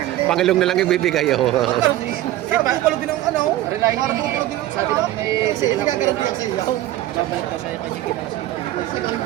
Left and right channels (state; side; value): quieter; left; 14.8 dB